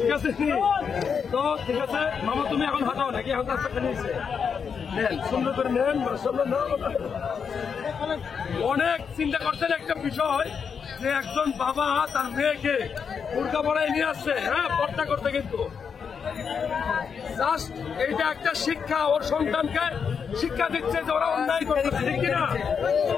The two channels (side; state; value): right; quieter; 6.5 dB